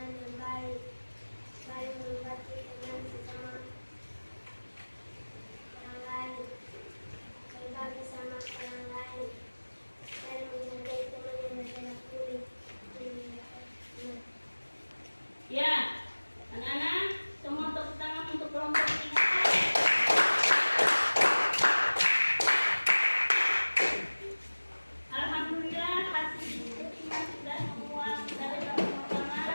yang baik, saling menghormati teman sesama orang lain, berbagi sama orang lain, saling menghargai teman yang berbeda kulit. Ya, anak-anak semua tepuk tangan untuk kelompok 3. Alhamdulillah hasil diskusinya sudah semua dari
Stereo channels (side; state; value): both; inverted; correlation -1.00